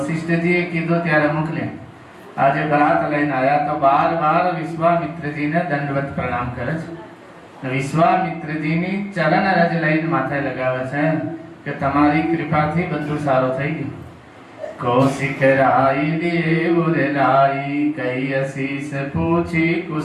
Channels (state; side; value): identical; both; correlation 1.00